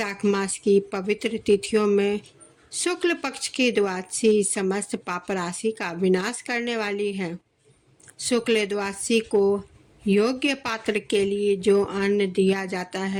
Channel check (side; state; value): both; identical; correlation 1.00